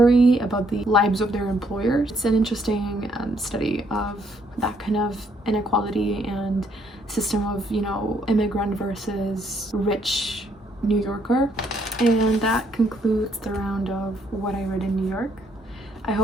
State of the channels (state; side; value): normal; both; correlation 0.70